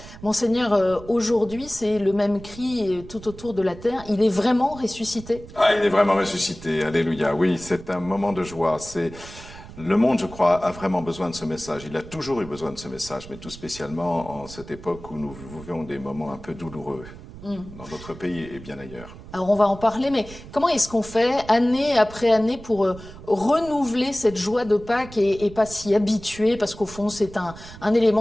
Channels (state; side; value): noise; right; rumble, 16 dB below the sound